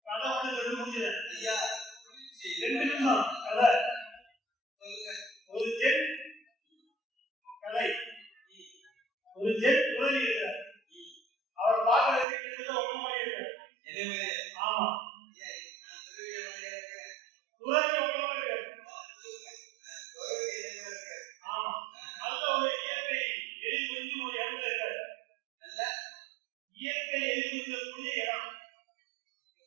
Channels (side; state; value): left; drops out; at 12.2 s